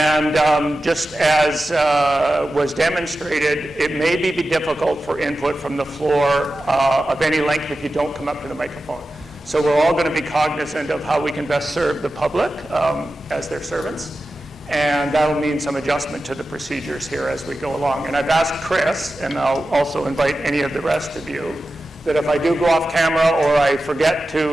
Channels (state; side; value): normal; both; correlation 0.93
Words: just as was demonstrated, it may be difficult for input from the floor of any length if you don't come up to the microphone. So we're all going to be cognizant of how we can best serve the public as their servants. And that'll mean some adjustment to the procedures here as we go along. And I've asked Chris, and I'll also invite any of the rest of you, that if I do go off camera or I forget